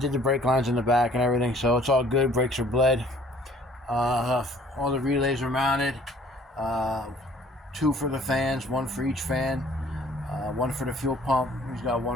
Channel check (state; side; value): normal; both; correlation 0.55